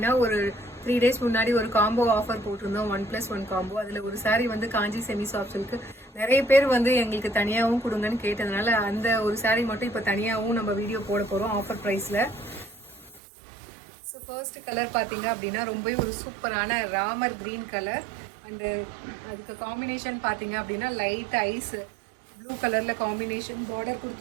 ஒரு 3 days முன்னாடி ஒரு காம்போ ஆஃபர் போட்டிருந்தோம், 1+1 காம்போ. அதில் ஒரு சாரீ வந்து காஞ்சி செமி சாஃப்ட் சில்க்கு. நிறைய பேர் வந்து எங்களுக்கு தனியாகவும் கொடுங்கன்னு கேட்டதுனால அந்த ஒரு சாரீ மட்டும் இப்போ தனியாகவும் நம்ம வீடியோ போட போகிறோம் ஆஃபர் ப்ரைஸில். ஸோ ஃபர்ஸ்ட் கலர் பார்த்தீங்க அப்படின்னா ரொம்பவே ஒரு சூப்பரான ராமர் கிரீன் கலர். அண்டு அதுக்கு காம்பினேஷன் பார்த்தீங்க அப்படின்னா லைட் ஐஸ் ப்ளூ கலர்ல காம்பினேஷன் பார்டர்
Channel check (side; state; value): left; drops out; at 13.2 s